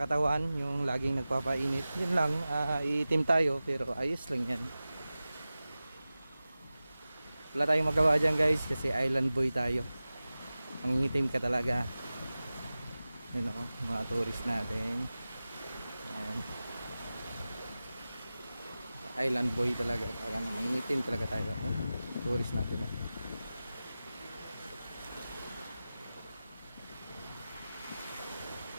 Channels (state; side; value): inverted; both; correlation -0.96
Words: yung laging nagpapainit. Yun lang, iitim tayo pero ayos lang yan. Wala tayong magawa dyan guys kasi island boy tayo. Mangingitim ka talaga. Yun o, mga tourist natin. Ayan. Island boy talaga. Mangingitim talaga tayo. Tourist natin.